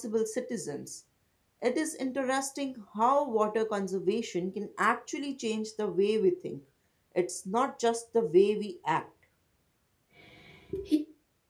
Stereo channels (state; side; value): identical; both; correlation 1.00